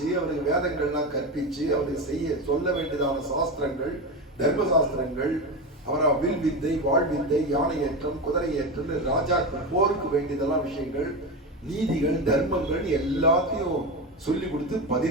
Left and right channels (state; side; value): normal; both; correlation 0.19